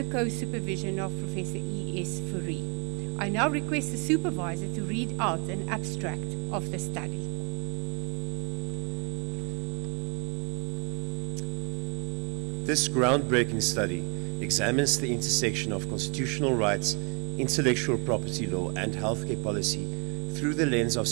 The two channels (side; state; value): left; quieter; 34.2 dB